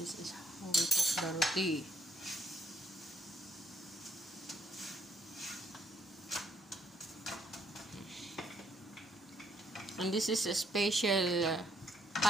is how we cook the roti. And this is a special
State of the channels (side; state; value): both; normal; correlation 0.72